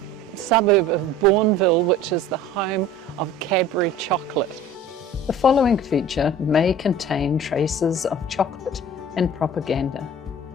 suburb of Bournville, which is the home of Cadbury chocolate. The following feature may contain traces of chocolate and propaganda.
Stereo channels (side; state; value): both; normal; correlation 0.44